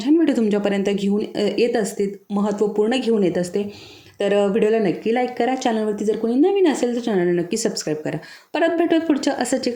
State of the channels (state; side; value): identical; both; correlation 1.00